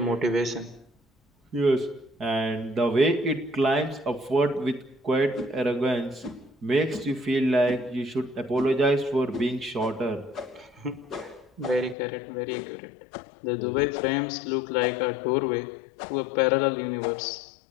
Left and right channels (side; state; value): right; drops out; at 12.0 s